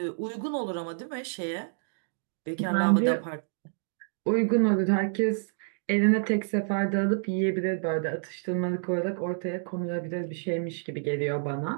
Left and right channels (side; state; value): left; silent; digital silence